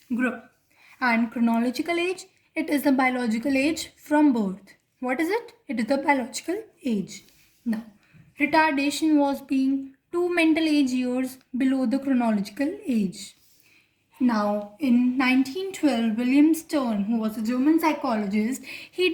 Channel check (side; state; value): both; identical; correlation 1.00